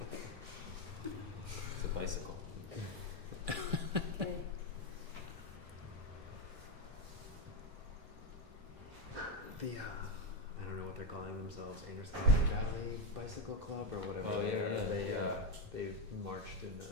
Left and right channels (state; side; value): normal; both; correlation 0.09